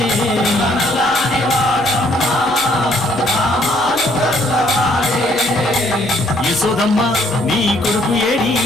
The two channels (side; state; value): left; noise; hum, 26 dB below the sound